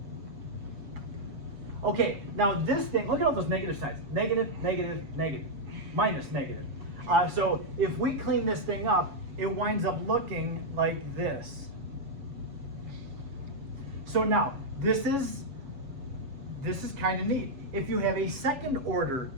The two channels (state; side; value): late; left; 7.2 ms